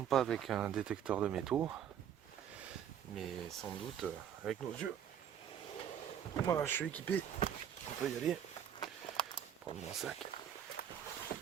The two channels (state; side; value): quieter; left; 9.1 dB